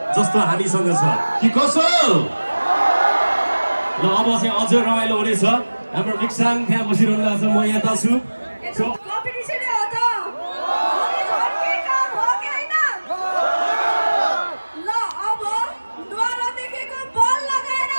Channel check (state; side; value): inverted; both; correlation -1.00